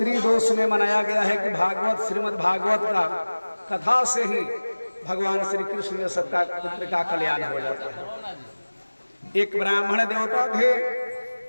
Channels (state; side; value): inverted; both; correlation -1.00